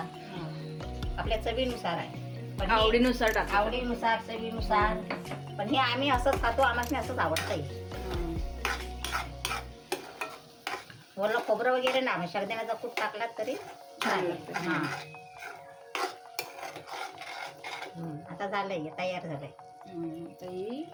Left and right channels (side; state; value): both; identical; correlation 1.00